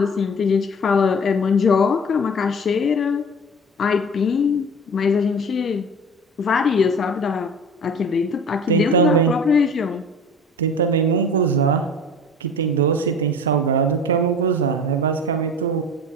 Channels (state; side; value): normal; both; correlation 0.40